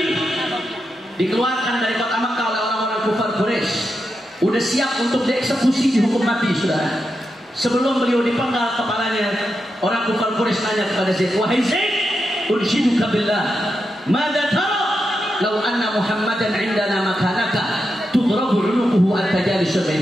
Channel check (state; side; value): normal; both; correlation 0.87